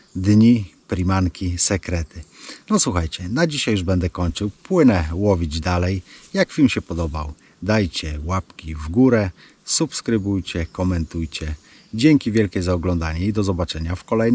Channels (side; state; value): both; identical; correlation 1.00